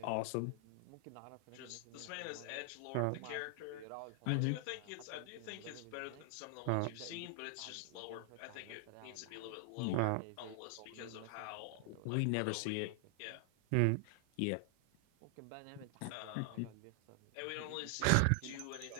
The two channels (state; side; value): different; both; correlation 0.00